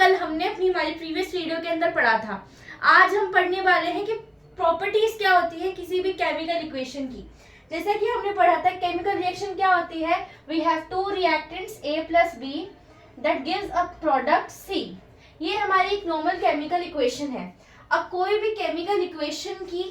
हमने हमारी प्रीवियस वीडियो के अंदर पढ़ा था। आज हम पढ़ने वाले हैं कि प्रॉपर्टीज क्या होती है किसी भी केमिकल इक्वेशन की। जैसे कि हमने पढ़ा था केमिकल रिएक्शन क्या होती है, we have two reactants A plus B that gives a product C। ये हमारी एक नॉर्मल केमिकल इक्वेशन है। अब कोई भी केमिकल इक्वेशन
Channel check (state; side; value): identical; both; correlation 1.00